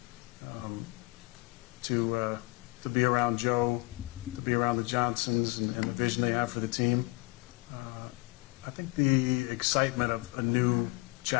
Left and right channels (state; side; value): quieter; right; 24.7 dB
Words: to be around Joe, to be around the Johnsons and the vision they have for the team. I think the excitement of a new